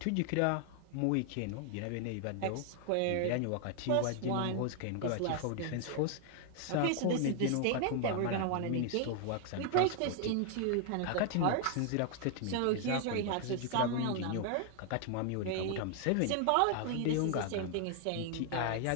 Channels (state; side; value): different; both; correlation 0.00